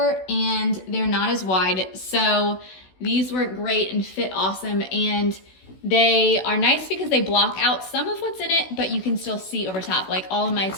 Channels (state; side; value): late; right; 16 ms